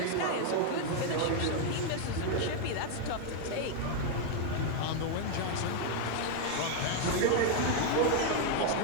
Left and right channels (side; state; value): both; different; correlation 0.01